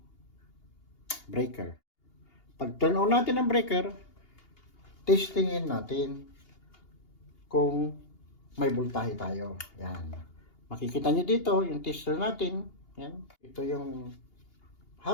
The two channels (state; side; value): late; right; 2.8 ms